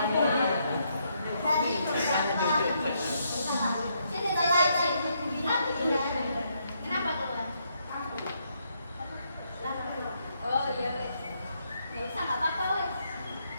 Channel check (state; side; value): inverted; both; correlation -0.76